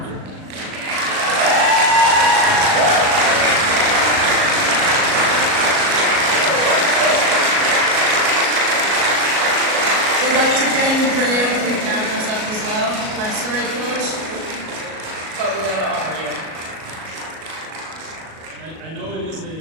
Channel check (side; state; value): left; late; 37 ms